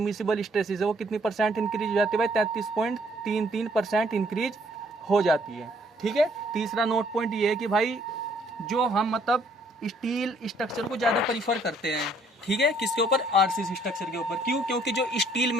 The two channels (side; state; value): both; normal; correlation 0.64